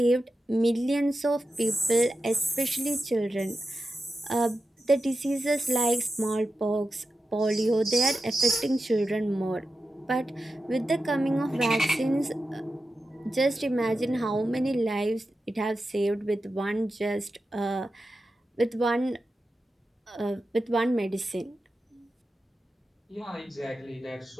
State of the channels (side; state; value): both; normal; correlation 0.91